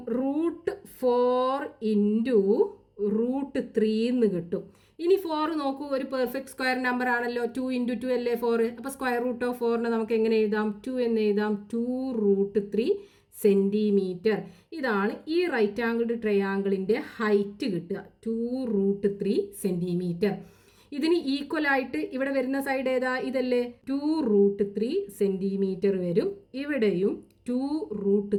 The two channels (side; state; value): both; identical; correlation 1.00